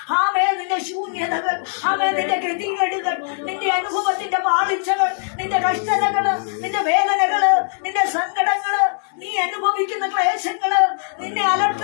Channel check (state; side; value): silent; right; digital silence